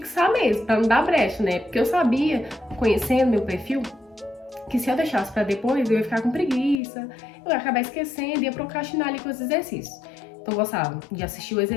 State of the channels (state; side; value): drops out; right; at 6.8 s